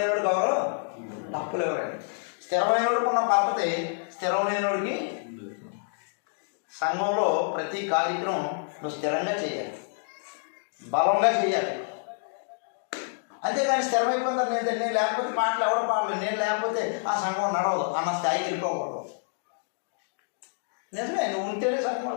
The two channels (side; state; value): right; silent; digital silence